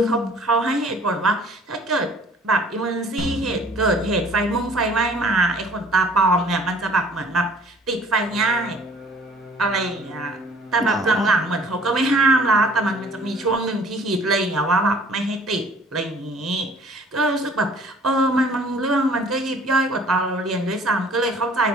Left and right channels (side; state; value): both; normal; correlation 0.53